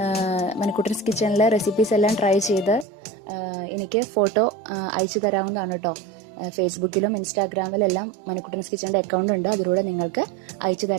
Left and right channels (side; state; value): left; drops out; at 2.9 s